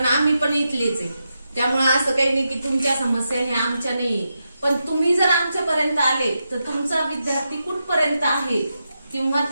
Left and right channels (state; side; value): inverted; both; correlation -0.87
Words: आम्ही पण इथलेच आहे. त्यामुळे असं काही नाही की तुमच्या समस्या हे आमच्या नाही, पण तुम्ही जर आमच्यापर्यंत आले तर तुमचा विद्यार्थी कुठपर्यंत आहे किंवा